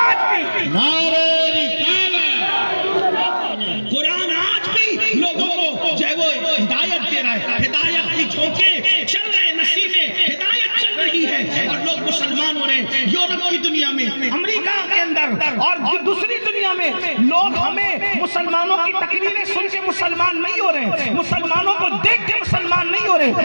نعرہ قرآن آج بھی لوگوں کو جو ہے وہ ہدایت دے رہا ہے، ہدایت کی جھونکے چل رہے ہیں، نصیبیں ہدایت چل رہی ہے اور لوگ مسلمان ہو رہے ہیں. یورپ کی دنیا میں، امریکہ کے اندر اور دوسری دنیا میں لوگ ہمیں مسلمانوں کی تقریریں سن کے مسلمان نہیں ہو رہے، مسلمانوں کو دیکھ کے مسلمان نہیں ہو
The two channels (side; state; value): both; inverted; correlation -1.00